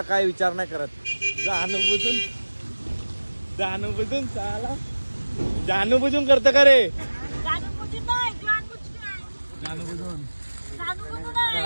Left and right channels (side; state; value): both; inverted; correlation -1.00